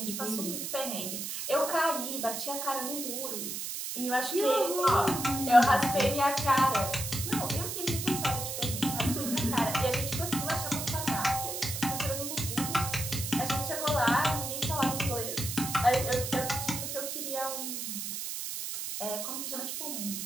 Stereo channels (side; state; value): right; noise; hiss, 4 dB below the sound